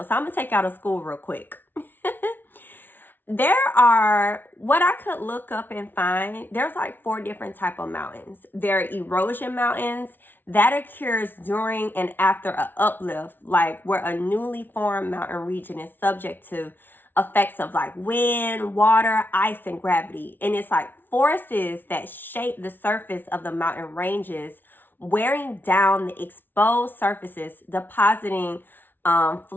So I'm going to take you out of school real quick. There are, what I could look up and find, there's like 4 different type of mountains. There are erosion mountains that occurs during and after an uplift, like where a newly formed mountain region is subject to effects of like wind, water, ice, and gravity. And it's like forces that shape the surface of the mountain ranges, wearing down the exposed surfaces, depositing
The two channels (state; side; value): late; right; 0.093 ms